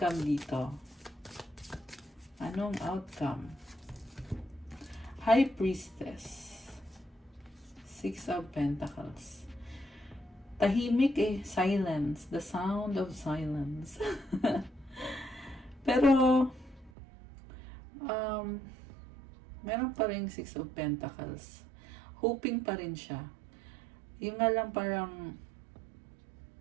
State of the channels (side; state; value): left; drops out; at 16.9 s